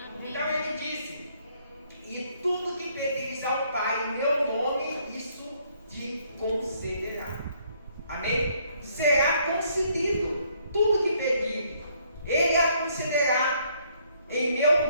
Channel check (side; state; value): both; inverted; correlation -0.67